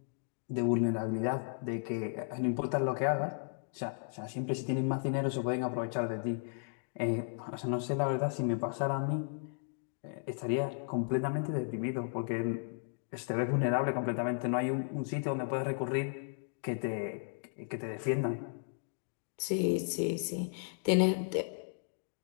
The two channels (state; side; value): silent; right; digital silence